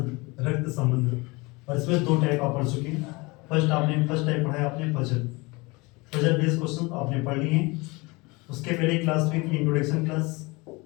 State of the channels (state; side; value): quieter; right; 25.2 dB